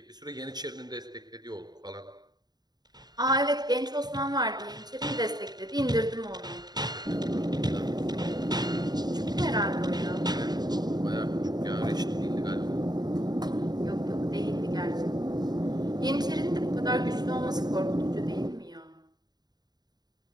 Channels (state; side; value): late; left; 0.20 ms